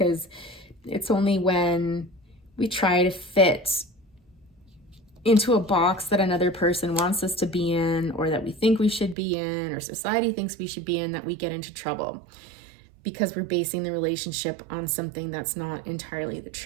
it's only when we try to fit into a box that another person wants us to be in, or that we think we should be in, or society thinks we should be in, that we get into trouble, because we're basing the relationship on something that's not entirely the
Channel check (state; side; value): drops out; left; at 9.2 s